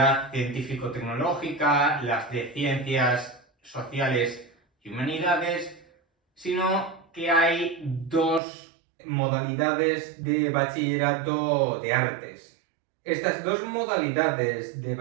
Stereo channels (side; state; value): left; drops out; at 8.4 s